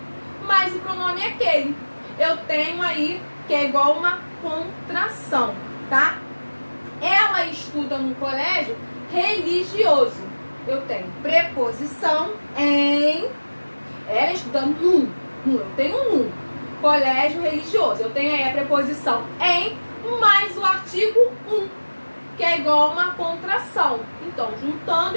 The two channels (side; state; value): both; inverted; correlation -1.00